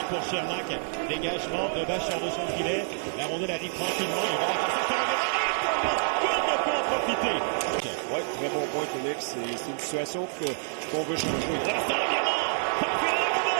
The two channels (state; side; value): silent; left; 58 dB below the other